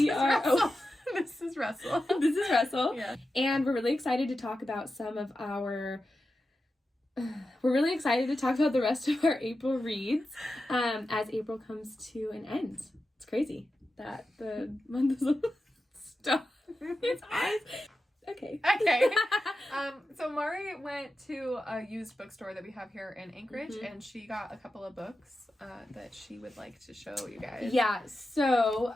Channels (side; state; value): both; normal; correlation 0.91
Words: are... Oh, this is Russell. This is Russell. Yeah. And we're really excited to talk about some of our... We're really excited to talk about the rest of our April reads as April comes to an end. It's crazy that the month is stop. It's eyes. Okay. So Mari went to a used bookstore that we have here in Anchorage, and she got a couple of books that she would like to show you guys. Yeah. So